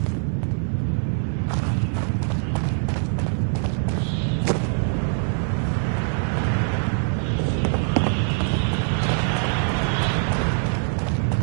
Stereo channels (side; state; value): left; silent; 56 dB below the other